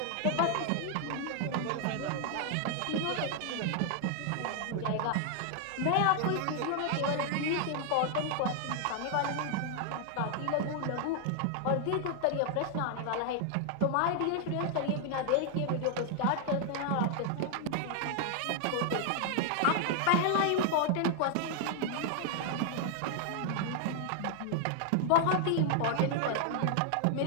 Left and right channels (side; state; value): both; different; correlation 0.00